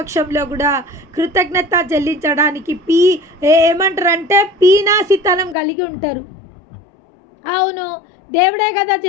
కూడా కృతజ్ఞత చెల్లించడానికి ఏమంటారంటే పీనాసితనం కలిగి ఉంటారు. అవును, దేవుడే కదా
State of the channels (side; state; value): right; drops out; at 5.6 s